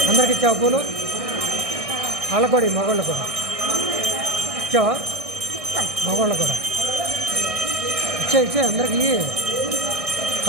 అందరికి ఇచ్చావు పూలు వాళ్ళకు కూడా మగవాళ్ళు కూడా ఇచ్చావా మగవాళ్ళు కూడా ఇచ్చే అందరికి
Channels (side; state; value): left; late; 1.6 ms